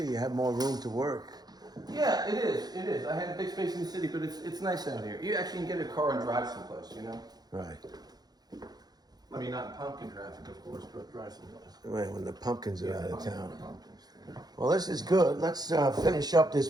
You have more room to work. Yeah, it is. It is. I had a big space in the city, but it's nice out here. You actually can get a car and drive someplace, you know? Right. I mean, not in pumpkin traffic, of course, but drive someplace. When the pumpkins are out of town. Pumpkins. Well, this is good. Let's finish up this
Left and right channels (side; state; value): left; late; 0.19 ms